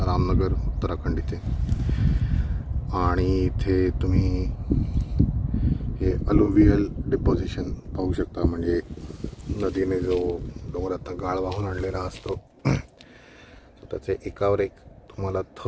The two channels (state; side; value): identical; both; correlation 1.00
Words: उत्तराखंड इथे. आणि इथे तुम्ही हे अलुवियल डिपॉझिशन पाहू शकता. म्हणजे नदीने जो डोंगरातनं गाळ वाहून आणलेला असतो त्याचे एकावर एक तुम्हाला